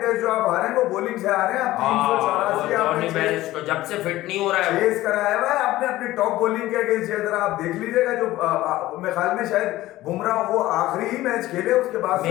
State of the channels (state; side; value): quieter; right; 16.3 dB